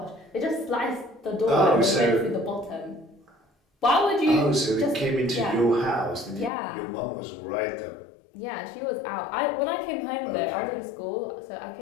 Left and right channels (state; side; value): drops out; right; at 6.5 s